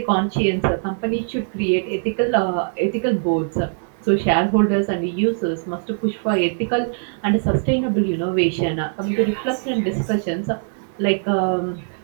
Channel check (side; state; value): left; silent; 65 dB below the other